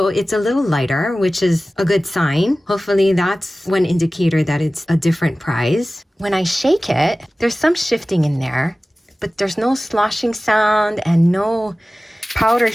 it's a little lighter, which is a good sign. Hopefully that's one indicator that it's a different price. When I shake it, there's some shifting in there, but there's no sloshing sound and no powder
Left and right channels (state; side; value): normal; both; correlation 0.97